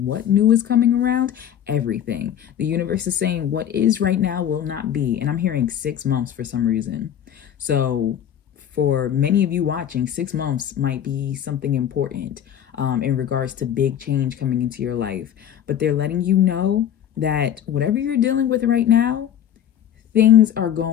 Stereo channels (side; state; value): right; quieter; 10.0 dB